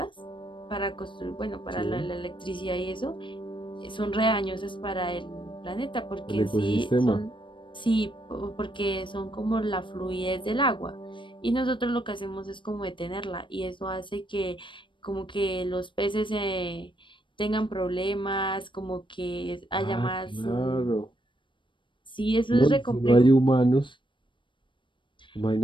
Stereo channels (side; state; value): right; late; 0.24 ms